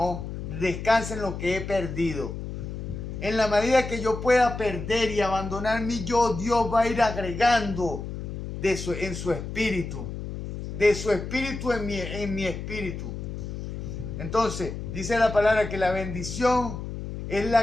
descansa en lo que he perdido. En la medida que yo pueda perder y abandonar mi yo, Dios va a ir agregando en su espíritu. De su espíritu en mi espíritu. Entonces, dice la palabra que la bendición es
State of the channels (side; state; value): left; noise; hum, 7 dB below the sound